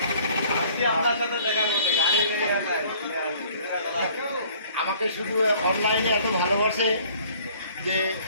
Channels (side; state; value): both; inverted; correlation -0.55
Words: আপনার সাথে দেখা করতে আমাকে শুধু অনলাইনে এত ভালোবাসে যে